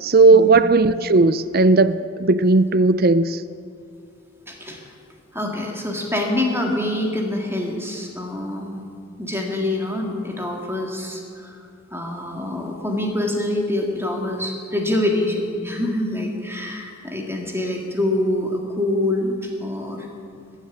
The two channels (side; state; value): both; normal; correlation 0.31